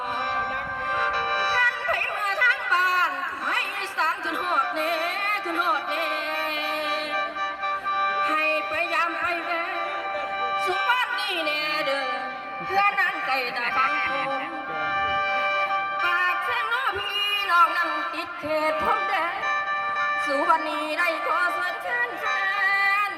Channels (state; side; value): identical; both; correlation 1.00